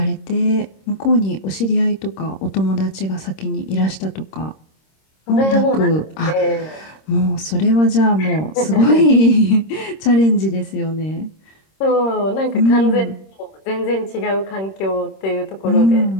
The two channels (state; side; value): late; right; 26 ms